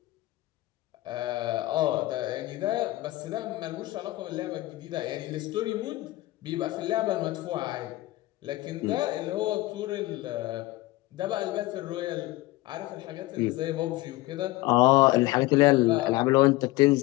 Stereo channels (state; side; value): quieter; right; 18.9 dB